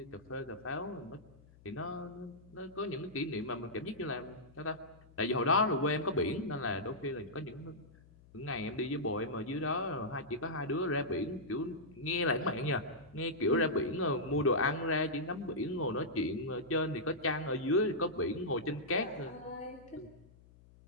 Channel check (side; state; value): left; noise; hum, 24 dB below the sound